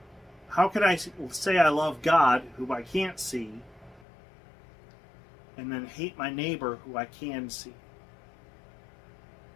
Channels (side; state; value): right; drops out; at 4.0 s